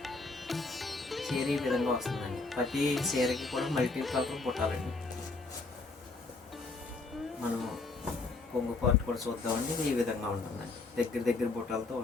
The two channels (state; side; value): quieter; right; 3.7 dB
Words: ఈ విధంగా వస్తుందండి. ప్రతి చీరకి కూడా మల్టీ కలర్ పుట్టాలండి. మనం కొంగు పార్ట్ కూడా చూద్దామండి. ఇది ఈ విధంగా ఉంటుందండి. దగ్గర బుట్టాలతో